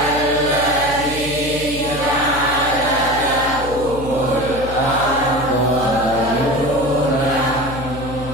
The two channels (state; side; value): noise; left; hum, 10 dB below the sound